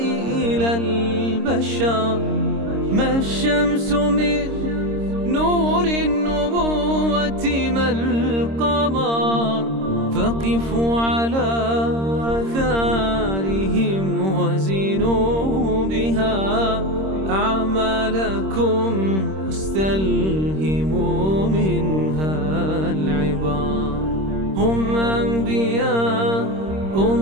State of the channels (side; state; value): left; late; 26 ms